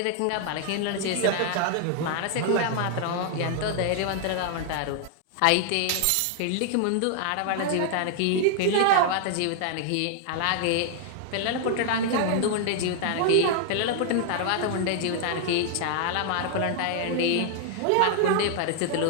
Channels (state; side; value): different; both; correlation 0.00